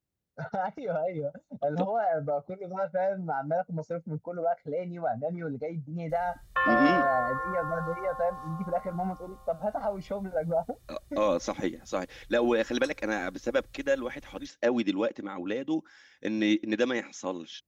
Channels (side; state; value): both; identical; correlation 1.00